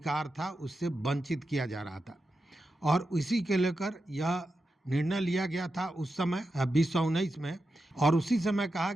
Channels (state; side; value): normal; both; correlation 0.89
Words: था उससे वंचित किया जा रहा था और इसी के लेकर यह निर्णय लिया गया था उस समय 2019 में। और उसी समय कहा